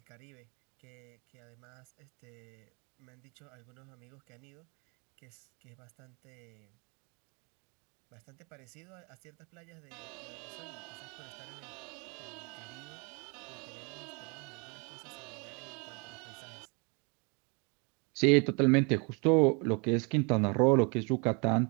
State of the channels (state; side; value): quieter; left; 32.4 dB